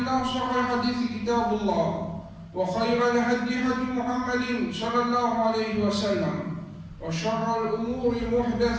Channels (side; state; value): both; identical; correlation 1.00